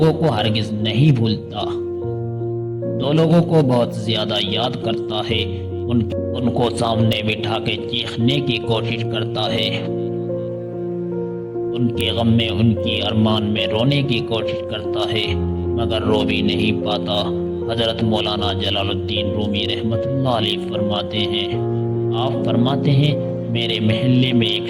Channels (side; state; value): both; identical; correlation 1.00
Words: کو ہرگز نہیں بھولتا، دو لوگوں کو بہت زیادہ یاد کرتا ہے، ان کو سامنے بٹھا کے چیخنے کی کوشش کرتا ہے، ان کے غم میں، ان کی ارمان میں رونے کی کوشش کرتا ہے، مگر رو بھی نہیں پاتا۔ حضرت مولانا جلال الدین رومی رحمت اللہ علیہ فرماتے ہیں، آپ فرماتے ہیں، میرے محلے میں